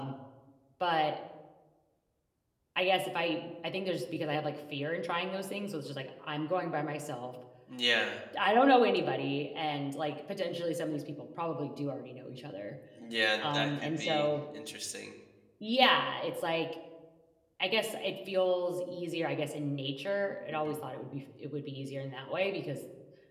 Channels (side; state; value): both; identical; correlation 1.00